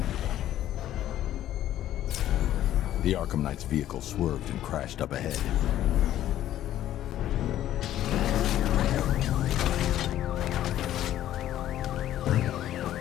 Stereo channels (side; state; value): right; quieter; 12.6 dB